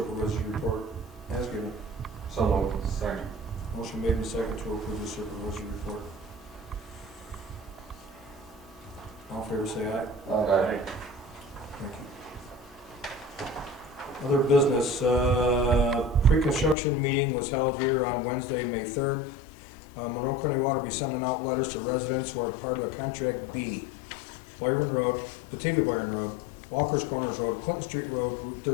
report as given. So moved. Second. Motion made and second to approve the supervisor's report. All in favor say aye. Aye. Thank you. Other business, pre-construction meeting was held here on Wednesday, May 3rd. Monroe County Water will be sending out letters to residents who are part of Contract B. Byron Road, Batavia Byron Road, Walker's Corners Road, Clinton Street Road, Route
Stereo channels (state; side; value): drops out; right; at 16.8 s